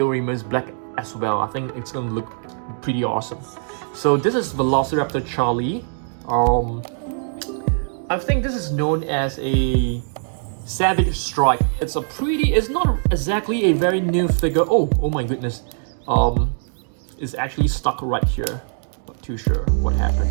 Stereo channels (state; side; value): silent; left; digital silence